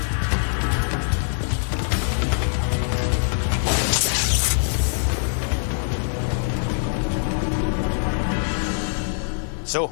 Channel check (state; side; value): silent; right; digital silence